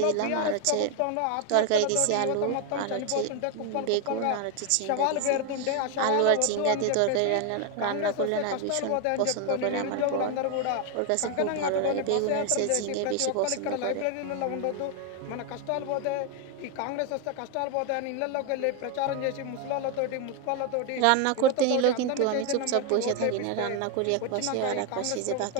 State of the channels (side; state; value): both; different; correlation 0.01